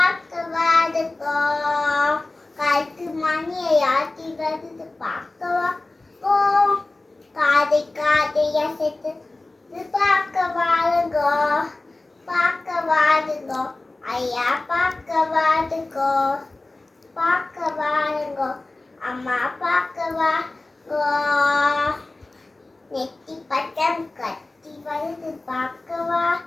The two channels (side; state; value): right; quieter; 3.0 dB